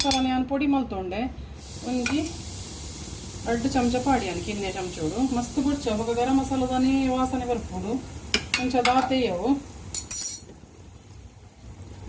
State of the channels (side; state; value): both; identical; correlation 1.00